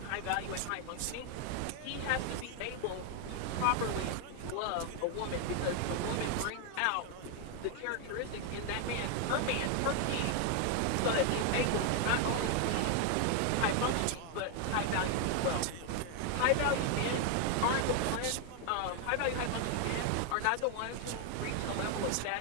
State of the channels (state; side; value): different; both; correlation 0.01